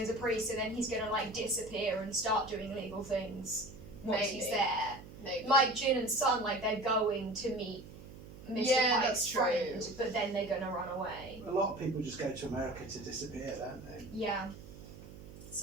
a priest, and then he's gonna, like, disappear and start doing illegal things once he's Maybe. there. Maybe. Like Jin and Sun, like, they're going to meet Mr. Yeah, Pike's that's true. friend, but then they're gonna run away. A lot of people just go to America to disappear, don't they? Yeah.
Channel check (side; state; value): right; noise; hum, 16 dB below the sound